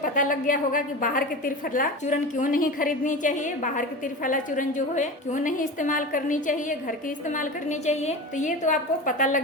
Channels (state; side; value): normal; both; correlation 0.29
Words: पता लग गया होगा कि बाहर के त्रिफला चूर्ण क्यों नहीं खरीदनी चाहिए, बाहर के त्रिफला चूर्ण जो है क्यों नहीं इस्तेमाल करनी चाहिए, घर के इस्तेमाल करनी चाहिए। तो ये तो आपको पता